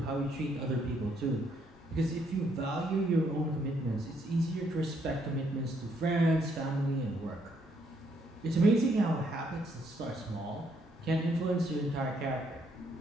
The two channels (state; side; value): normal; both; correlation 0.71